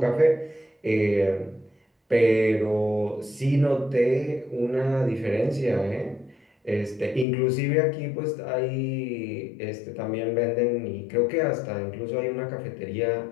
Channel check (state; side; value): drops out; right; at 7.2 s